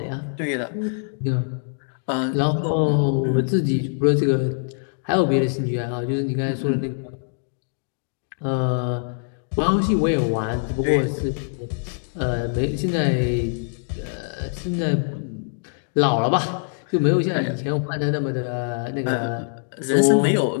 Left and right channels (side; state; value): right; silent; digital silence